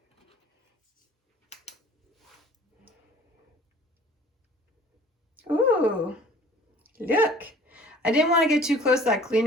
Ooh, look. I didn't want to get too close to that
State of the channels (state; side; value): normal; both; correlation 0.49